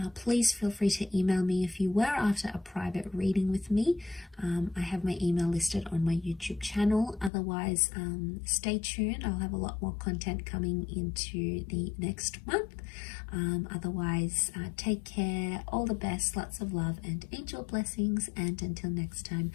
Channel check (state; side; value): drops out; right; at 7.3 s